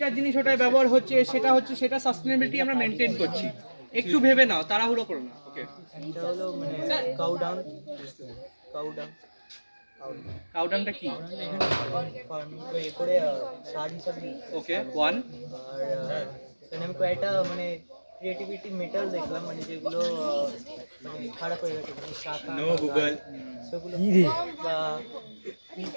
জিনিস ওটাই ব্যবহার হচ্ছে, সেটা সাস্টেনেবিলিটি আমরা মেনটেন করছি। একটু ভেবে নাও, তাড়াহুড়ো করো না। ওকে, এটা হলো মানে কাউডাং। কাউডাংটা কি? ফার্মিং করে সার হিসাবে। ওকে, 1। আর এখানে আমি কয়েকটা মানে ক্রিয়েটিভিটি মেটাল দেখলাম, মানে যেগুলো মানে খারাপ হয়ে গেছে, মানে শাখা নো গুগল। সেগুলো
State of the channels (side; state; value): both; inverted; correlation -1.00